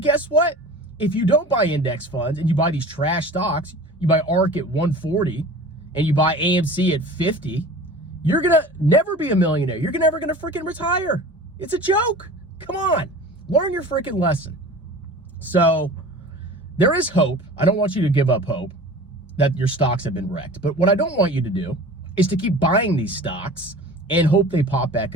guess what? If you don't buy index funds and you buy these trash stocks, you buy ARK at 140 and you buy AMC at 50, you're going to never be a millionaire. You're never going to freaking retire. It's a joke. Come on. Learn your freaking lesson. So there is hope. I don't want you to give up hope that your stocks have been wrecked. But what I don't want you to do is to keep buying these stocks and hope they pop back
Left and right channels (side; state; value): both; normal; correlation 0.39